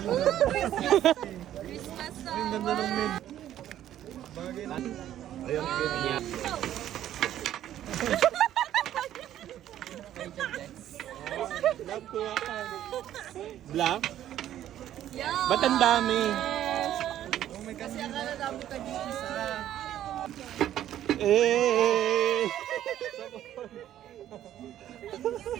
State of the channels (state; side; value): quieter; left; 11.8 dB